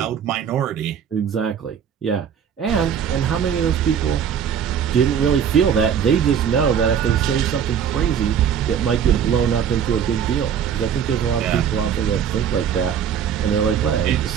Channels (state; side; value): quieter; left; 8.1 dB